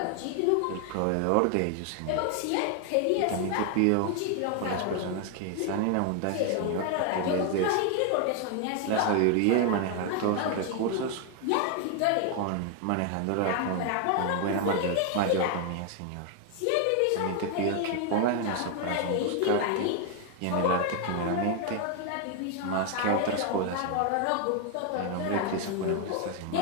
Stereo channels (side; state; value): both; different; correlation 0.01